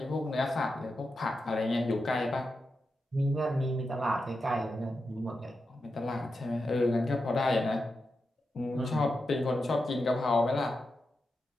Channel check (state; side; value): normal; both; correlation 0.88